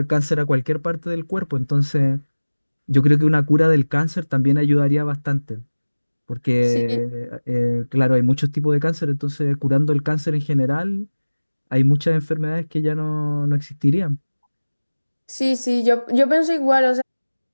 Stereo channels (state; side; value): inverted; both; correlation -1.00